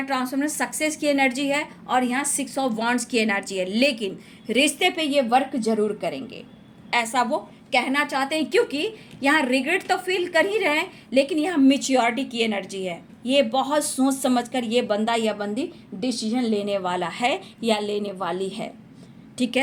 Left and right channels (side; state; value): both; identical; correlation 1.00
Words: ट्रांसफॉर्मर सक्सेस की एनर्जी है और यहाँ 6 ऑफ वांड्स की एनर्जी है। लेकिन रिश्ते पे ये वर्क जरूर करेंगे, ऐसा वो कहना चाहते हैं, क्योंकि यहाँ रिग्रेट तो फील कर ही रहे हैं, लेकिन यहाँ मैच्योरिटी की एनर्जी है। ये बहुत सोच समझकर ये बंदा या बंदी डिसीजन लेने वाला है या लेने वाली है, ठीक